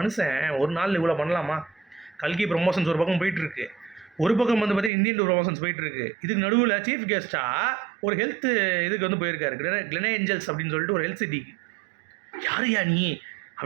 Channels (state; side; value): drops out; left; at 4.9 s